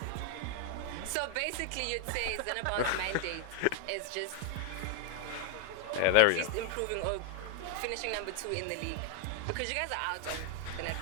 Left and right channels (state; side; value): different; both; correlation 0.01